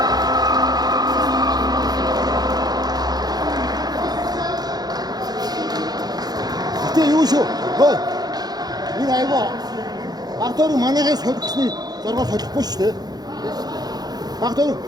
Юу шүү. Хөөе. Энэ айгаа. Багтаар манайхаа солихсны зоргоо солихгүй шүү дээ. Багтаар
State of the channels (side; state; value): left; late; 0.19 ms